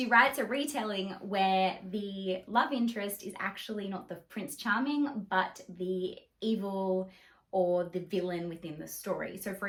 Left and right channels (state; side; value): identical; both; correlation 1.00